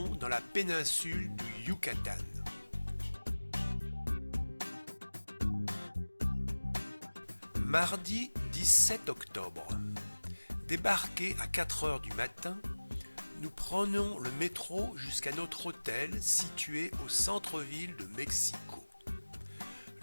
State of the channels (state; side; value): inverted; both; correlation -1.00